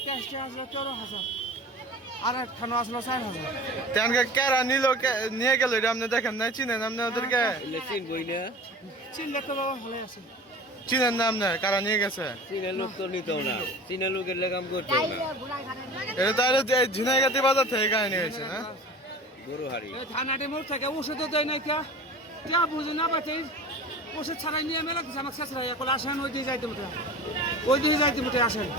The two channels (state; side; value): normal; both; correlation 0.38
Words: ক্যাশ আসলো 14,000 আর একখানো আসলো 4,000। তেনকে কেরা নিল নিয়ে গেল এটা আপনি দেখেন না? চিনেন আপনি ওদেরকে? চিনলে তো বাবা ভালো আছে। চিনেন না আপনি কারা নিয়ে গেছে? চীনের লোক তো নিত না, চীনের লোকের লেগাম করতো না। এটা তাহলে ঝিনাইগাতি বাজার থেকে কাহিনী হয়েছে না? গরু হারি এই থানাটি মোড় থেকে ওষুধও দেয় নাই কে বুঝি না পাতে ওষুধ ছাড়াই নিয়ে মেলা কিছু আমাকে শেষ রাখা বলে আসেন ওই দিয়ে যাইতে মোটে আসেন